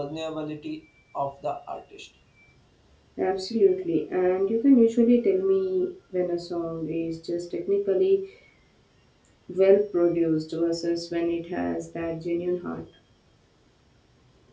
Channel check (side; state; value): both; identical; correlation 1.00